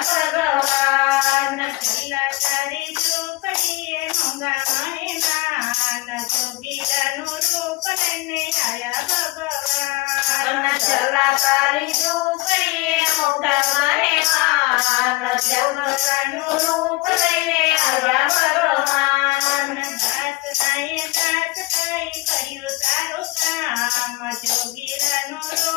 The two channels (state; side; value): quieter; right; 21.7 dB